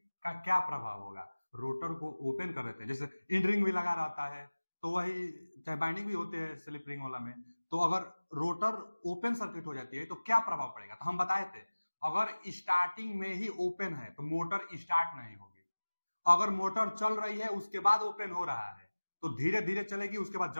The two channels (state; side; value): inverted; both; correlation -1.00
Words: का क्या प्रभाव होगा। रोटर को ओपन कर देते हैं, जैसे इंड रिंग भी लगा रहता है तो वही, चाहे बाइंडिंग भी होते हैं स्लिप रिंग वाला में, तो अगर रोटर ओपन सर्किट हो जाती है तो क्या प्रभाव पड़ेगा। तो हम बताए थे अगर स्टार्टिंग में ही ओपन है तो मोटर स्टार्ट नहीं होगी। अगर मोटर चल रही है उसके बाद ओपन हो रहा है तो धीरे धीरे चलेगी, उसके बाद